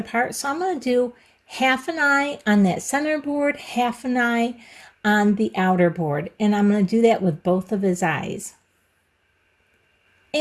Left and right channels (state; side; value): identical; both; correlation 1.00